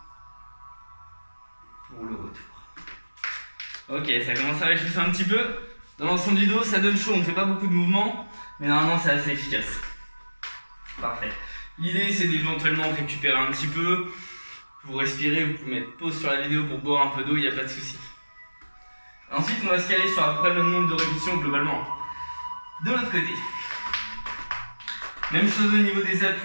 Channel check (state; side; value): inverted; both; correlation -1.00